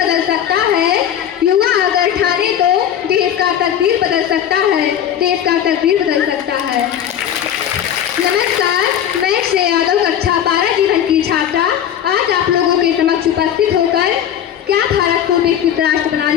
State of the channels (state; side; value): quieter; right; 9.9 dB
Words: सकता है। युवा अगर ठाने तो देश का तस्वीर बदल सकता है। नमस्कार, मैं श्रेया यादव, कक्षा 12 जीवन की छात्रा, आज आप लोगों के समक्ष उपस्थित होकर क्या भारत को विकसित राष्ट्र